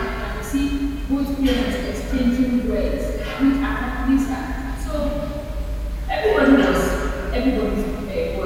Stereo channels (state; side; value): identical; both; correlation 1.00